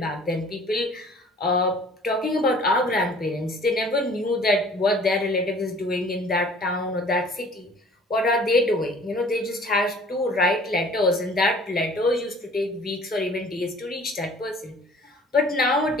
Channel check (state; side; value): normal; both; correlation 0.51